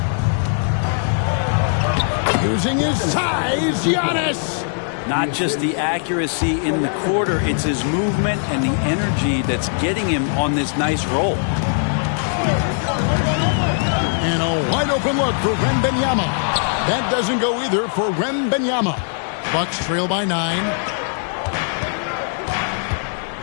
Using his size, Giannis. Not just the accuracy in the quarter, it's his movement and the energy that's getting him on this nice roll. And a wide open look for Wembanyama. That doesn't go either for Wembanyama. Bucks trail by 9.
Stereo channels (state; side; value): silent; right; digital silence